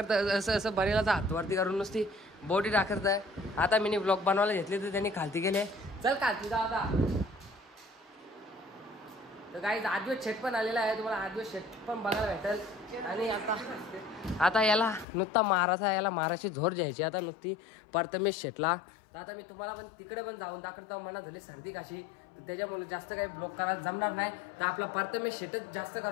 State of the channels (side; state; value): right; drops out; at 15.1 s